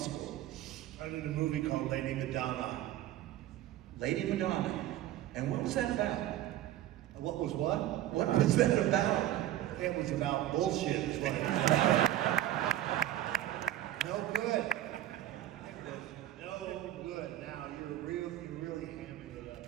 I did a movie called Lady Madonna. Lady Madonna. And what was that about? What was what? What was that about? It was about bullshit, is what it was. No good. No good. Now, you really hamming it up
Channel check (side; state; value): left; quieter; 13.3 dB